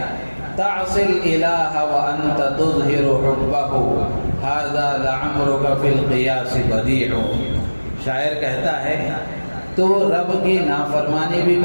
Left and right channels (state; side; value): inverted; both; correlation -1.00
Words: تعصی الالہ وانت تظہر حبہ ھذا لعمرک فی القیاس بدیع۔ شاعر کہتا ہے تو رب کی نافرمانی بھی